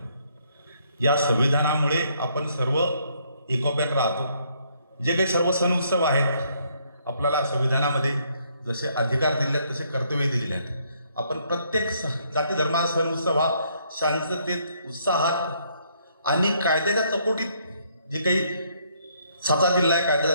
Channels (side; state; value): both; inverted; correlation -0.69